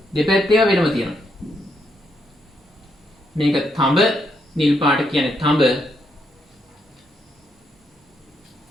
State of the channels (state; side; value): normal; both; correlation 0.77